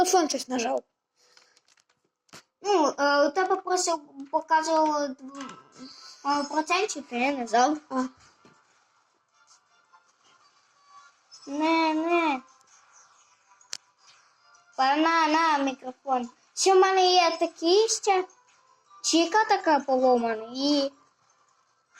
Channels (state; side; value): identical; both; correlation 1.00